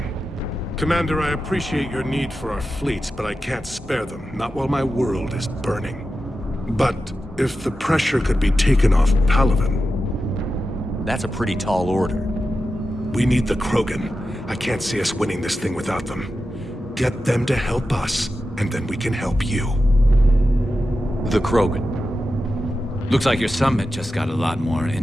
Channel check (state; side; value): normal; both; correlation 0.91